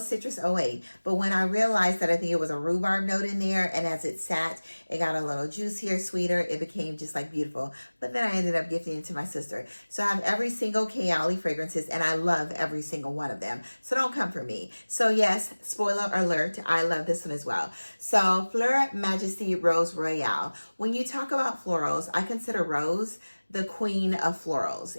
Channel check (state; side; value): inverted; both; correlation -1.00